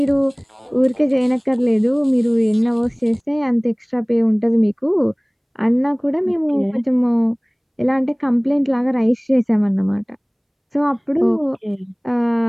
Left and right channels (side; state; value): both; identical; correlation 1.00